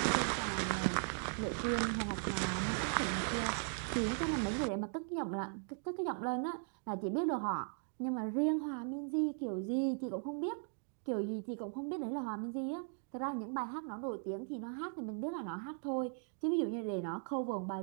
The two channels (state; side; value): silent; left; 52 dB below the other